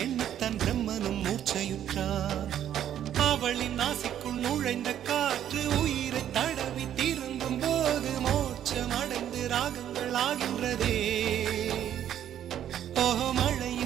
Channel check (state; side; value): quieter; left; 10.6 dB